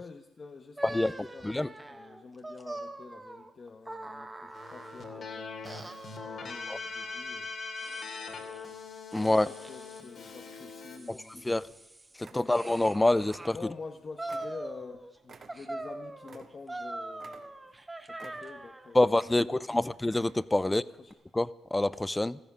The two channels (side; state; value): both; normal; correlation 0.98